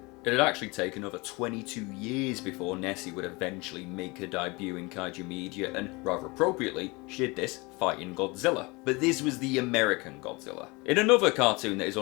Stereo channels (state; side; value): quieter; right; 25.8 dB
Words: It had actually taken over 22 years before Nessie would eventually make her debut in kaiju media, and rather appropriately, she did this fighting Godzilla. But this was the American Godzilla. In another cartoon that is